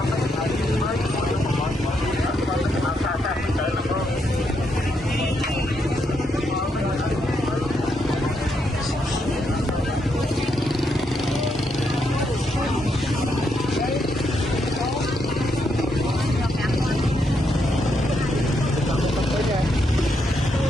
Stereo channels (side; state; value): both; normal; correlation 0.79